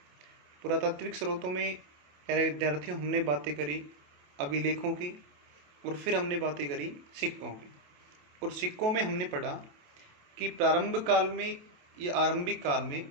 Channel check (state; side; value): late; left; 28 ms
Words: पुरातात्विक स्रोतों में प्यारे विद्यार्थियों हमने बातें करी अभिलेखों की, और फिर हमने बातें करी सिक्कों की। और सिक्कों में हमने पढ़ा कि प्रारंभ काल में या आरंभिक काल में